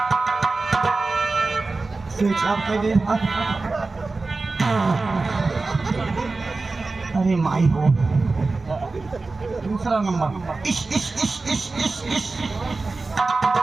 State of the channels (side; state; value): left; quieter; 3.7 dB